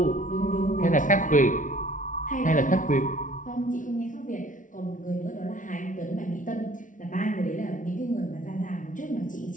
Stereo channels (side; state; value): right; late; 0.38 ms